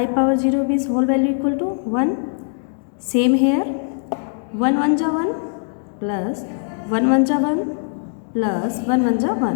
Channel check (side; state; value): right; silent; digital silence